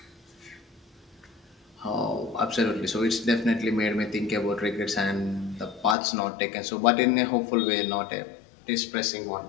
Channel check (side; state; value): right; drops out; at 6.0 s